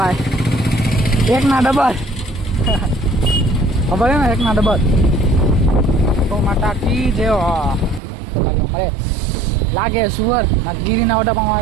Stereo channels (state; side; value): drops out; left; at 8.0 s